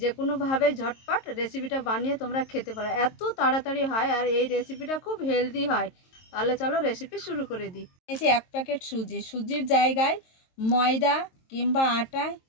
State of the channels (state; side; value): late; right; 22 ms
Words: কোনোভাবে ঝটপট রেসিপিটা বানিয়ে তোমরা খেতে পারো। এত তাড়াতাড়ি হয় আর এই রেসিপিটা খুব হেলদি হয়। তাহলে চলো রেসিপি শুরু করে দিই। এই যে 1 প্যাকেট সুজির জায়গায় ময়দা কিংবা আটা